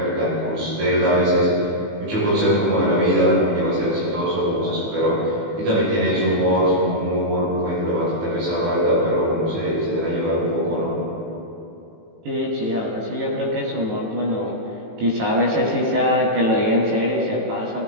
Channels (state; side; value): late; left; 18 ms